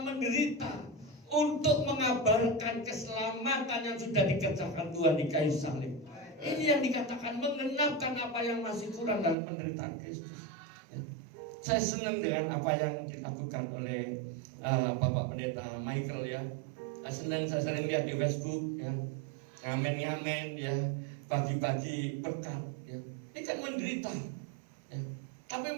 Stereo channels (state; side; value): drops out; left; at 9.3 s